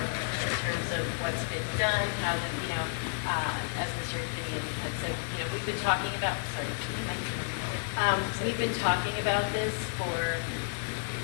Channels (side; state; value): right; silent; 57 dB below the other